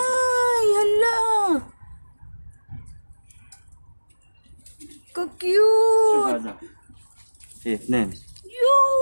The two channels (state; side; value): inverted; both; correlation -1.00